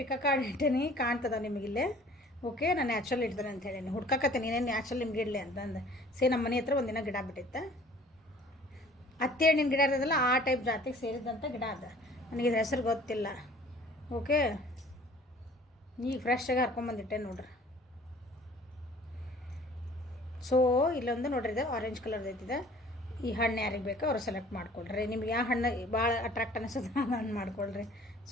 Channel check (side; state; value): both; normal; correlation 0.51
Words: ಪಿಕ ಕಾರ್ಡ್ ಇಟ್ಟೀನಿ, ಕಾಣ್ತದ ನಿಮಗಿಲ್ಲೇ. ಓಕೆ, ನಾನು ನ್ಯಾಚುರಲ್ ಇಡ್ತೇನೆ ಅಂತ ಹೇಳೀನಿ. ಹುಡ್ಕಕತ್ತೀನಿ ಏನೇನು ನ್ಯಾಚುರಲ್ ನಿಮ್ಗೆ ಇಡಲಿ ಅಂತಂದು. ನಮ್ಮ ಮನೆ ಹತ್ರ ಒಂದಿನ ಗಿಡ ಬಿಟ್ಟಿತ್ತು. ಹತ್ತಿ ಹಣ್ಣಿನ ಗಿಡ ಇರೋದಲ್ಲ, ಆ ಟೈಪ್ ಜಾತಿಗೆ ಸೇರಿದಂಥ ಗಿಡ ಅದ. ನನಗೆ ಇದ್ರ ಹೆಸರು ಗೊತ್ತಿಲ್ಲ. ಓಕೆ, ಈಗ ಫ್ರೆಶ್ಶಾಗಿ ಹರ್ಕೊಂಬಂದಿಟ್ಟೆ ನೋಡ್ರಿ. ಸೊ ಇಲ್ಲೊಂದು ನೋಡ್ರಿ, ಇದು ಆರೆಂಜ್ ಕಲರ್ದು ಐತಿದೆ. ಈ ಹಣ್ಣು ಯಾರಿಗೆ ಬೇಕೋ ಅವ್ರು ಸೆಲೆಕ್ಟ್ ಮಾಡ್ಕೊಳ್ರಿ. ನಿಮ್ಗೆ ಯಾವ ಹಣ್ಣು ಭಾಳ ಅಟ್ರಾಕ್ಟ್ ಅನಿಸ್ತದೆ ಆ ಹಣ್ಣು ಮಾಡ್ಕೊಳ್ರಿ.